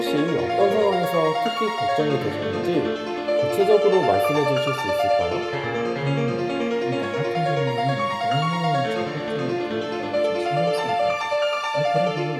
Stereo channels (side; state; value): both; identical; correlation 1.00